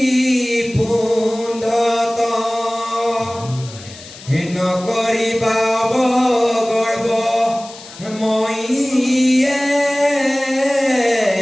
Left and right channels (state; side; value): noise; left; hiss, 17 dB below the sound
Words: পুণ্ডত হে নকৰিবা অৱগৰ্ব মইয়ে